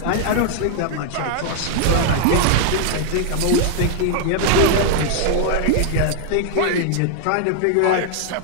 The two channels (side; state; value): both; different; correlation 0.00